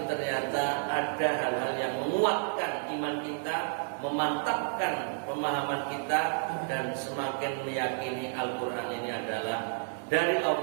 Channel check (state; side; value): silent; left; 57 dB below the other